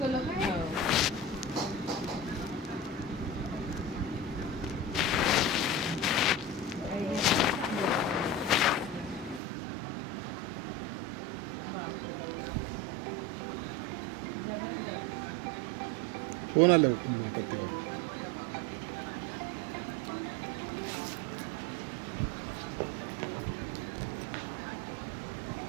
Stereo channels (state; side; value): drops out; left; at 9.4 s